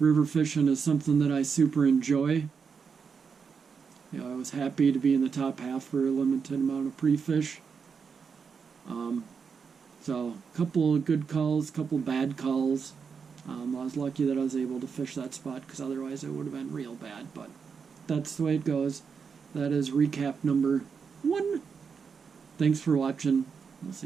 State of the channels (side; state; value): left; quieter; 5.9 dB